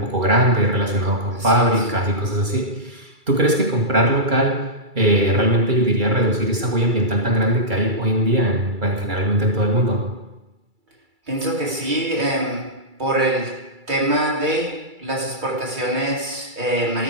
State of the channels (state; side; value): late; left; 2.3 ms